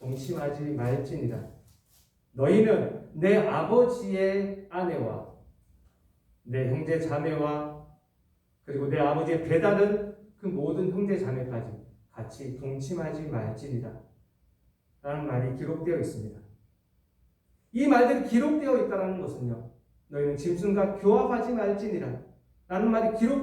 말지니라. 너희는 내 아버지의 아내와 내 형제 자매와 그리고 내 아버지의 배다른 그 모든 형제 자매까지 같이 동침하지 말지니라 라는 말이 기록되어 있습니다. 이 말들이 기록되어 있다는 것은요 너희는 짐승과 교합하지 말지니라 라는 말이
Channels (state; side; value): identical; both; correlation 1.00